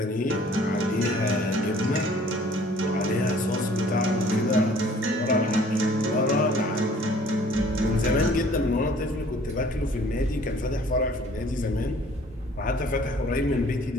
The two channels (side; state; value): both; normal; correlation 0.54